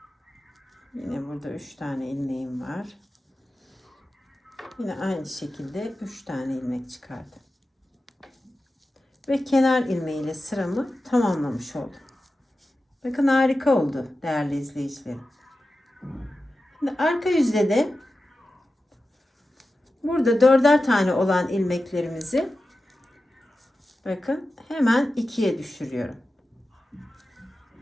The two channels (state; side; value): normal; both; correlation 0.93